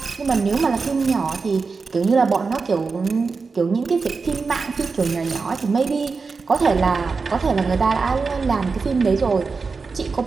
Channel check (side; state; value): left; quieter; 4.6 dB